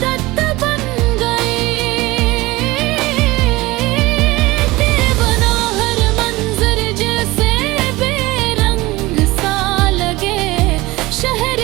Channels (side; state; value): left; quieter; 20.3 dB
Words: बन गई। तेरे बना हर मंजर जैसे बेरंग सा लगे। शहर